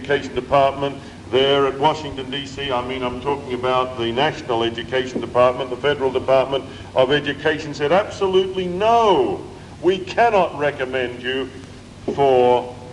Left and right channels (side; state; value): both; identical; correlation 1.00